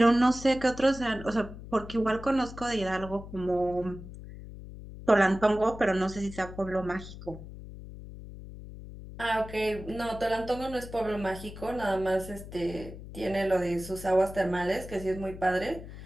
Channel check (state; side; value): noise; left; hum, 13 dB below the sound